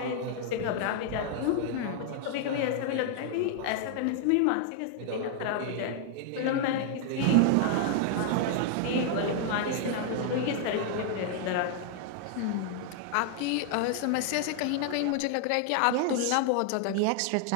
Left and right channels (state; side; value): different; both; correlation 0.00